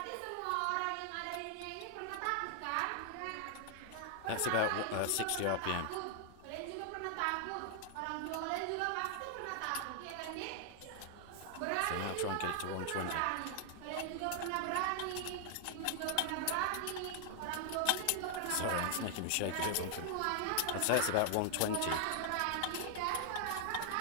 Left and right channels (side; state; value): both; different; correlation 0.00